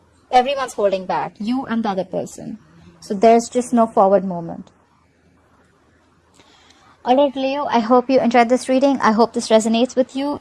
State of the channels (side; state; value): both; identical; correlation 1.00